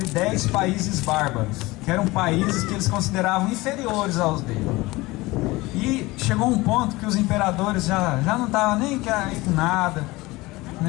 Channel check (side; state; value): right; quieter; 21.1 dB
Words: 10 países bárbaros, que eram países que eles consideravam inferiores aos deles. E chegou um ponto que os imperadores já não estavam nem aí com nada,